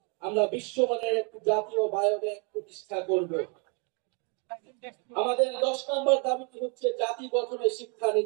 আমরা বিশ্বমানের একটি জাতীয় বায়োব্যাংক প্রতিষ্ঠা করব। আমাদের 10 নম্বর দাবিটি হচ্ছে জাতি গঠনের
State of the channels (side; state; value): left; quieter; 34.2 dB